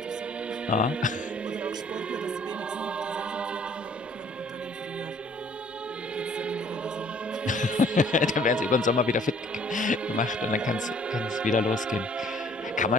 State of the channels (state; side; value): normal; both; correlation 0.58